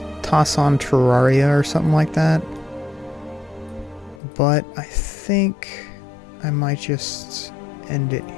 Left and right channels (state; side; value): drops out; right; at 4.2 s